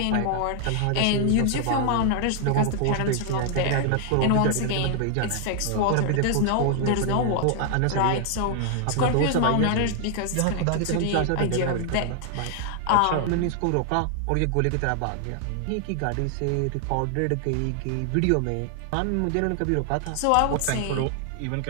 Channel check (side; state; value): both; different; correlation 0.00